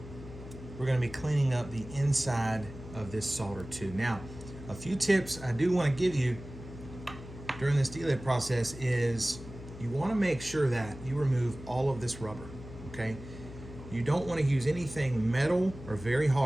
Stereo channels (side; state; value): left; noise; hum, 14 dB below the sound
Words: we're gonna be cleaning up the inside of this solder too. Now, a few tips I do wanna give you during this delid process is you wanna make sure that you remove all of this rubber, okay? You don't want to use anything metal or very